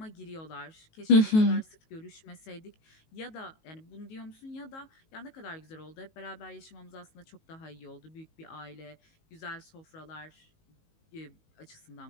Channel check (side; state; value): right; late; 19 ms